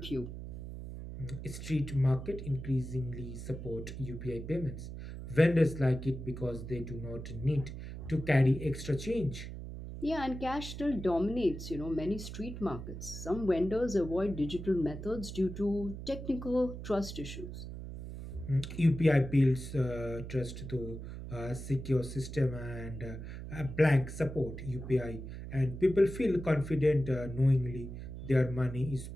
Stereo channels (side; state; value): right; noise; hum, 9 dB below the sound